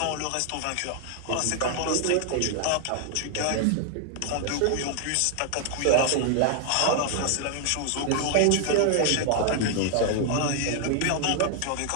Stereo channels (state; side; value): different; both; correlation 0.00